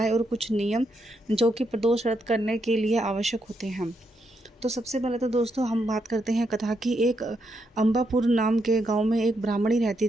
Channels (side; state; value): both; normal; correlation 0.80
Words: और कुछ नियम जो कि प्रदोष व्रत करने के लिए आवश्यक होते हैं। तो सबसे पहले तो दोस्तों हम बात करते हैं कथा की। एक अंबापुर नाम के गांव में एक ब्राह्मणी रहती